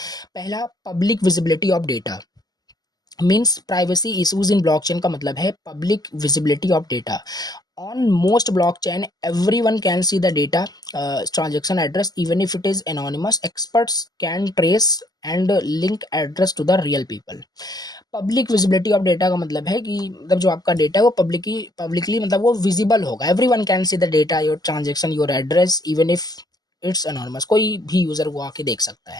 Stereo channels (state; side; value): late; right; 0.19 ms